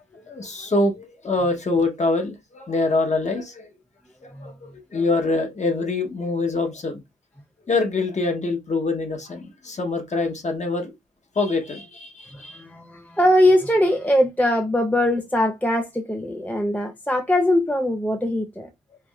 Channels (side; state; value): both; normal; correlation 0.74